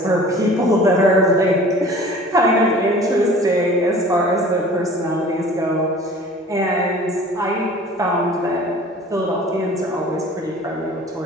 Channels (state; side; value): normal; both; correlation 0.45